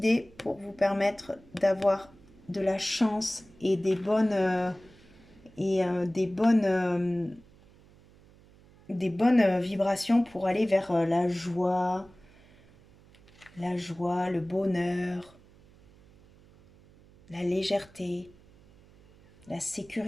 pour vous permettre d'avoir de la chance et des bonnes vibrations pour aller vers la joie, le bonheur, la légèreté, la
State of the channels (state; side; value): noise; right; hum, 26 dB below the sound